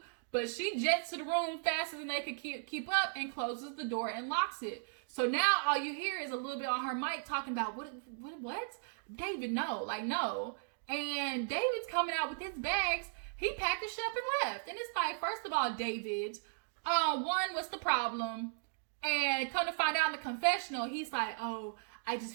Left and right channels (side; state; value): left; silent; digital silence